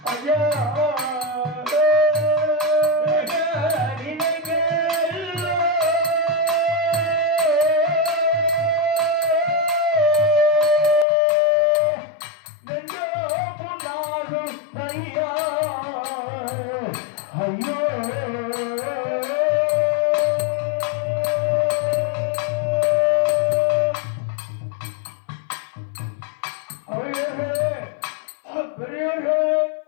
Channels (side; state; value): right; drops out; at 11.1 s